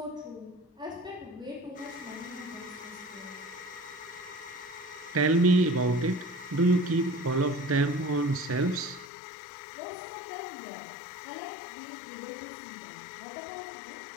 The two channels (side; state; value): right; drops out; at 9.1 s